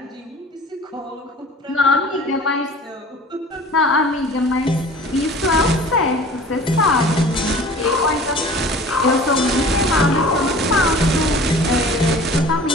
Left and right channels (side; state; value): both; normal; correlation 0.44